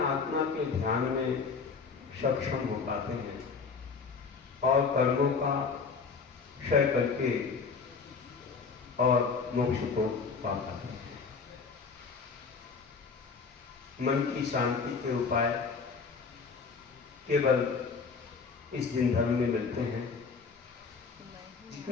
के ध्यान में सक्षम हो पाते हैं और कर्मों का क्षय करके और मोक्ष को पा पाते हैं। मन की शांति के उपाय केवल इस दिन धर्म में मिलते हैं।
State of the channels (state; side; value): quieter; right; 5.1 dB